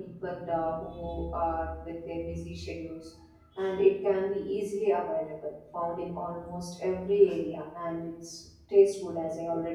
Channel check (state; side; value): identical; both; correlation 1.00